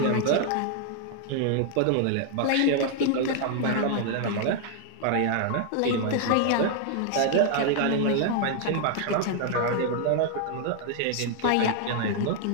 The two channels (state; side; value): different; both; correlation 0.00